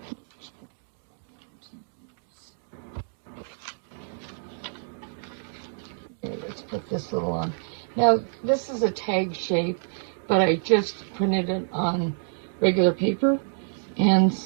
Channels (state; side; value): silent; left; digital silence